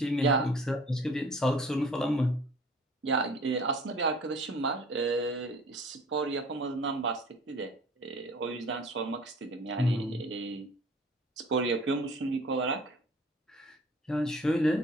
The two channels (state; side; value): normal; both; correlation 0.48